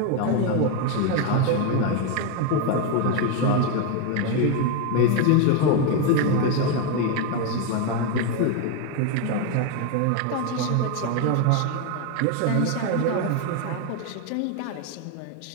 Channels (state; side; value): different; both; correlation 0.02